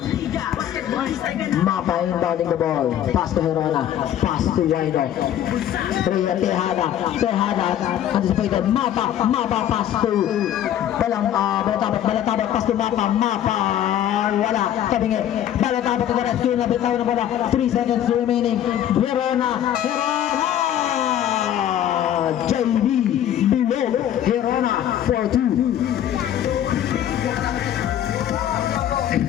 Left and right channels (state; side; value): quieter; right; 10.9 dB